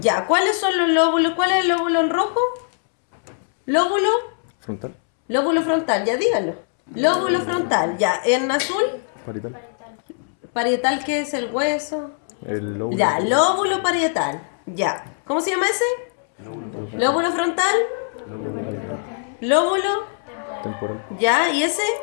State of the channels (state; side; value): silent; right; 65 dB below the other